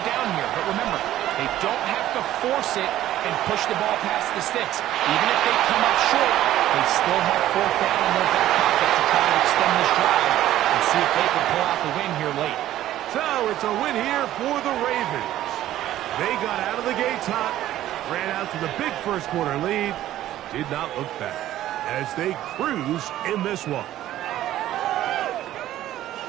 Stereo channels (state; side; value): quieter; left; 13.4 dB